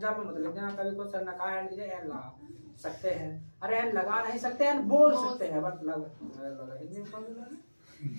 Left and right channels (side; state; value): both; inverted; correlation -1.00